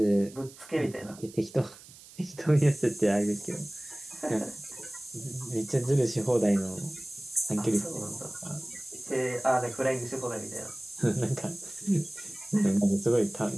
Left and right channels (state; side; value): noise; right; hiss, 20 dB below the sound